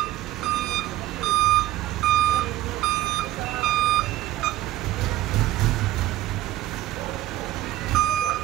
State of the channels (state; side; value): quieter; left; 15.3 dB